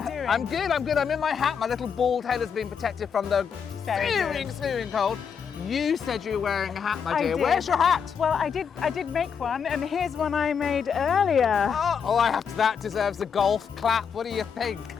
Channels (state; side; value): quieter; right; 6.8 dB